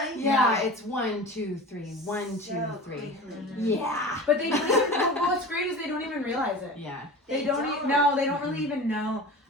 Yeah, it's 1, 2, 3, 1, 2, 3. Quickly. Yeah. But they don't even, what's great is they don't even realize it. Yeah. They don't. No, they don't really even know.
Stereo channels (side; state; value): both; normal; correlation 0.35